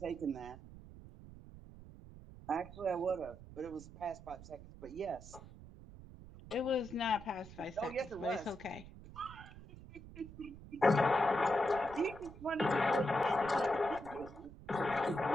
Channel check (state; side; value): noise; right; rumble, 16 dB below the sound